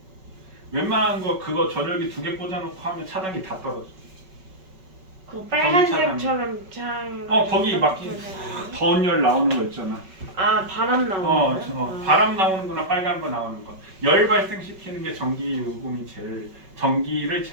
웬만한 거 그거 전열기 2개 꽂아놓고 하면 차단기 다 떨어져. 그 빨간색처럼 창. 거기 막 더운 열 나오는 거 있잖아. 아 바람 나오는 거. 바람 나오는 거나 빨간 거 나오는 거. 열 발생시키는 게 전기를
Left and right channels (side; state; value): left; late; 5.3 ms